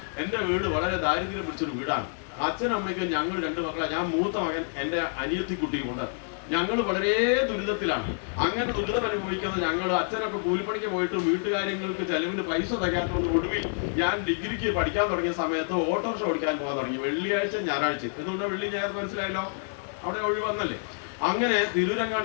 എന്റെ വീട് വളരെ ദാരിദ്ര്യം പിടിച്ചൊരു വീടാണ്. അച്ഛനും അമ്മയ്ക്കും ഞങ്ങൾ 2 മക്കളെ. ഞാൻ മൂത്ത മകൻ, എന്റെ അനിയത്തിക്കുട്ടിയുണ്ട്. ഞങ്ങൾ വളരെ ദുരിതത്തിലാണ്. അങ്ങനെ ദുരിതം അനുഭവിക്കുന്ന ഞങ്ങൾ, അച്ഛനൊക്കെ കൂലിപ്പണിക്ക് പോയിട്ട് വീട്ടുകാര്യങ്ങൾക്ക് ചെലവിന് പൈസ തികയാത്തതുകൊണ്ട് ഒടുവിൽ ഞാൻ ഡിഗ്രിക്ക് പഠിക്കാൻ തുടങ്ങിയ സമയത്ത് ഓട്ടോറിക്ഷ ഓടിക്കാൻ പോകാൻ തുടങ്ങി. വെള്ളിയാഴ്ച ഞായറാഴ്ച. എന്തുകൊണ്ടാണ് വെള്ളി ഞായർ? മനസ്സിലായല്ലോ, അവിടെ ഒഴിവന്നല്ലേ. അങ്ങനെ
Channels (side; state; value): right; silent; 60 dB below the other